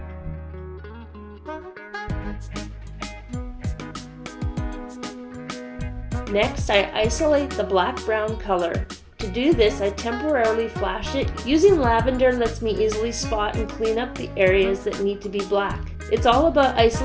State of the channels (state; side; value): identical; both; correlation 1.00